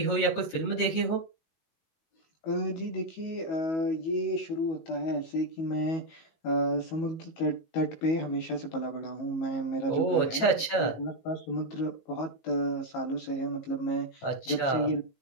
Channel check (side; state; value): right; late; 18 ms